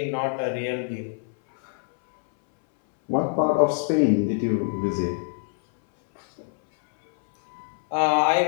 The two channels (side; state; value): right; silent; 62 dB below the other